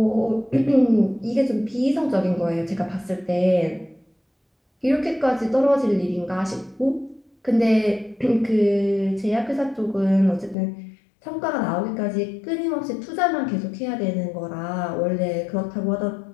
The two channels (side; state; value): right; drops out; at 10.6 s